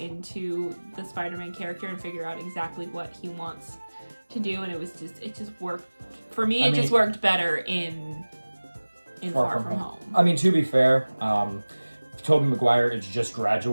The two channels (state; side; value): inverted; both; correlation -1.00